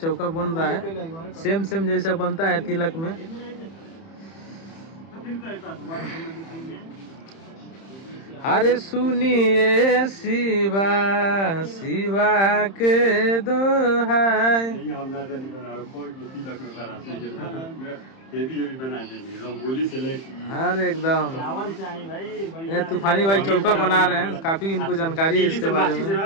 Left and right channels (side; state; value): right; late; 31 ms